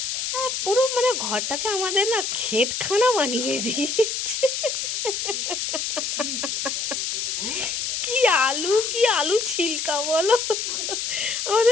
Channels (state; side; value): noise; left; hiss, 2 dB below the sound